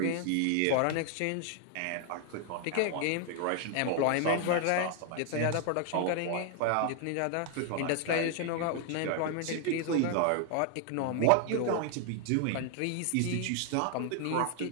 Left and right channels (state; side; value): different; both; correlation 0.00